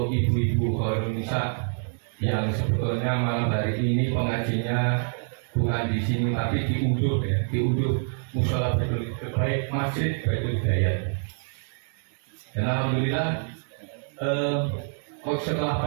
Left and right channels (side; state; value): left; silent; 61 dB below the other